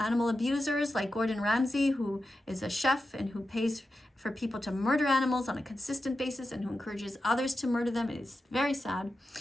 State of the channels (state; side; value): normal; both; correlation 0.91